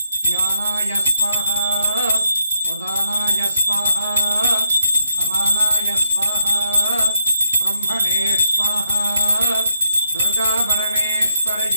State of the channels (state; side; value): inverted; both; correlation -0.78